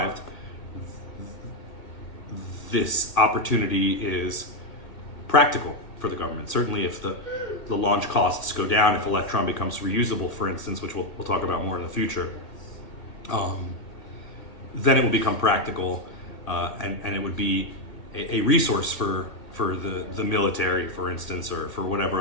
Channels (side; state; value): right; late; 2.0 ms